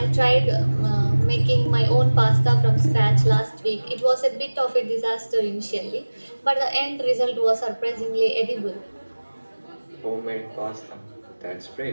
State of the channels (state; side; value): inverted; both; correlation -1.00